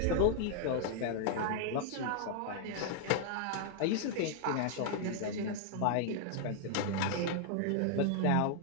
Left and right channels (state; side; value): different; both; correlation 0.00